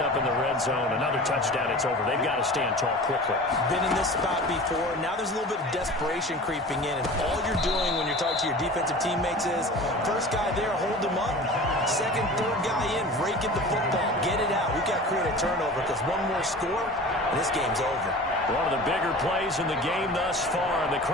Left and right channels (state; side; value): normal; both; correlation 0.38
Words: in the red zone. Another touchdown, it's over. They've got to stand tall quickly. Been in this spot before. Now there's a little bit of desperation creeping in, and all you're doing when you're talking to your defensive teammates is, first guy there, hold him up. 2nd, 3rd guy in, rake at the football. Get it out. We've got to create a turnover because one more score, and this game's over. One of the bigger plays in the game thus far, and the